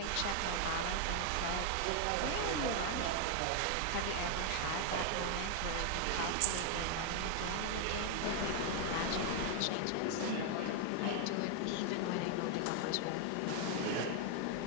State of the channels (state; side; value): different; both; correlation 0.00